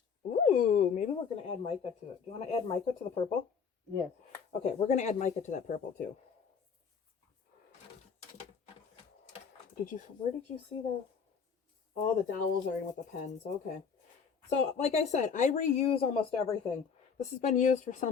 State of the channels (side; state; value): right; quieter; 6.2 dB